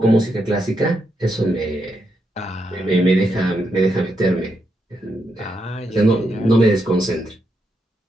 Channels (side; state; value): both; normal; correlation 0.81